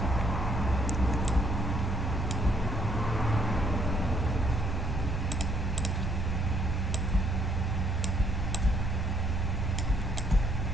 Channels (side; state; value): both; normal; correlation 0.69